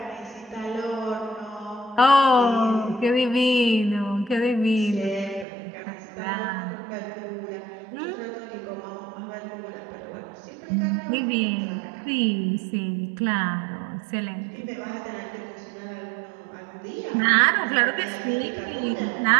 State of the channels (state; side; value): drops out; left; at 5.5 s